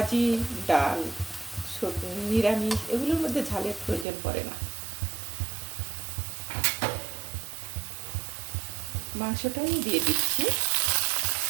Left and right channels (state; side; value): drops out; left; at 4.0 s